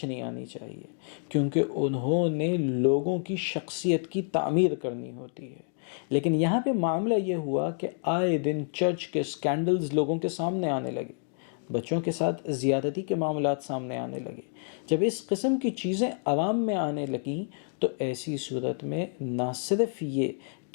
نہیں آنی چاہیے، کیونکہ انہوں نے لوگوں کی شخصیت کی تعمیر کرنی ہوتی ہے۔ لیکن یہاں پہ معاملہ یہ ہوا کہ آئے دن چرچ کے سکینڈلز لوگوں کے سامنے آنے لگے، بچوں کے ساتھ زیادتی کے معاملات سامنے آنے لگے۔ جب اس قسم کی چیزیں عوام میں آنے لگیں تو ایسی صورت میں نہ صرف یہ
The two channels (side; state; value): right; silent; digital silence